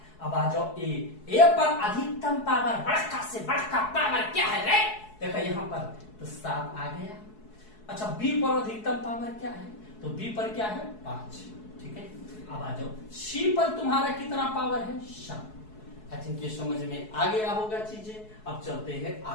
अब आ जाओ ए पर अधिकतम पावर, बड़का से बड़का पावर क्या है रे, देखा यहाँ पर तो 7 आ गया। अच्छा बी पर अधिकतम पावर क्या है, तो बी पर क्या है 5, ठीक है। अब आ जाओ सी पर तुम्हारा कितना पावर है 7। आई थिंक ये समझ में आ गया होगा चीजें। अब चलते हैं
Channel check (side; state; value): right; late; 4.7 ms